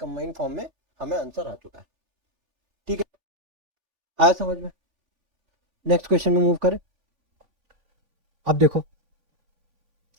फॉर्म में हमें आंसर आ चुका है। ठीक है, आया समझ में। नेक्स्ट क्वेश्चन में मूव करें। अब देखो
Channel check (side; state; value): left; late; 3.4 ms